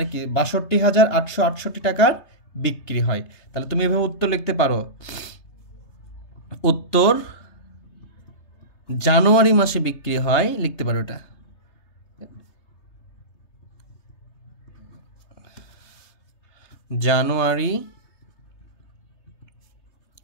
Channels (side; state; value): right; late; 3.3 ms